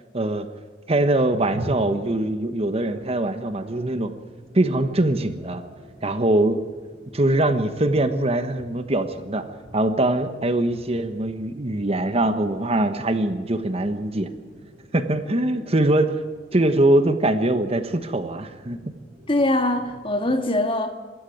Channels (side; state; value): both; normal; correlation 0.59